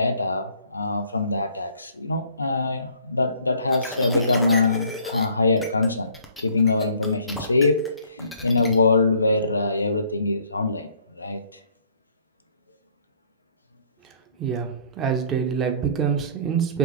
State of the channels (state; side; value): inverted; both; correlation -0.58